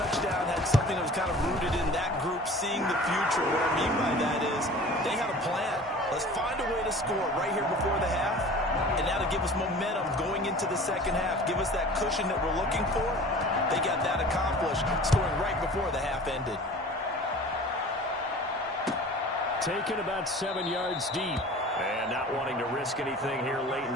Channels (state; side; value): normal; both; correlation 0.42